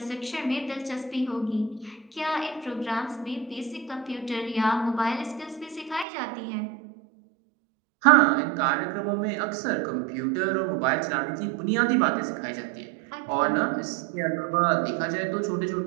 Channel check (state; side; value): drops out; left; at 6.1 s